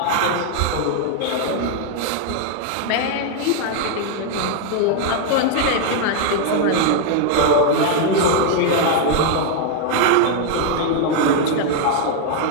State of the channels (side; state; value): both; different; correlation 0.00